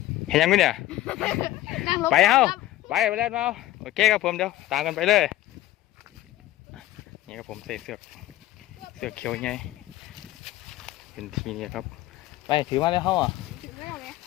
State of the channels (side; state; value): right; quieter; 15.4 dB